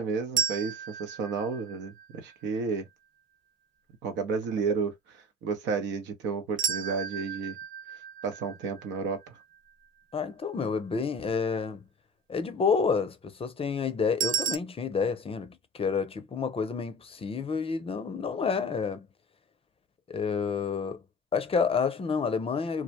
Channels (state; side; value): normal; both; correlation 0.40